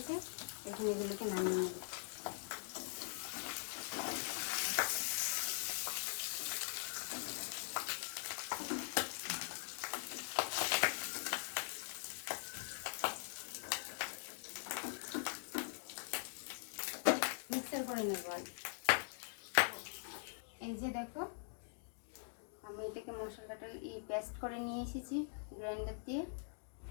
এখন এগুলোকে নামিয়ে নেব। মিক্সার করে নেব। এই যে দেখো, আমি এটাকে মশলাটা পেস্ট করে নিয়ে এসেছি গ্রাইন্ডার দিয়ে।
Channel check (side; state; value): right; silent; digital silence